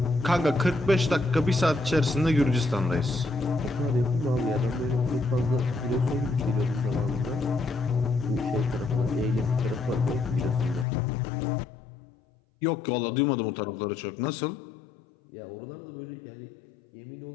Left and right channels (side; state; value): right; drops out; at 10.9 s